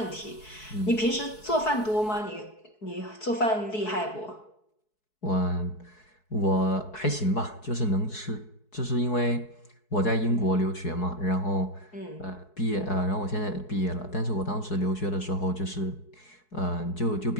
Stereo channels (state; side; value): late; right; 4.7 ms